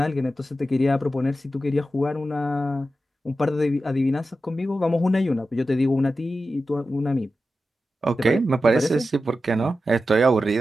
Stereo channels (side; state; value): both; normal; correlation 0.92